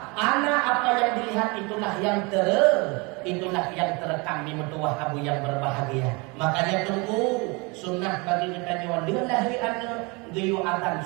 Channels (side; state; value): left; quieter; 28.2 dB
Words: Anak apa yang dilihat itulah yang terekam di mertua abu yang berbahagia. Makanya tunggu sunnah bagi kita nyawa lillahi anak geyu adzan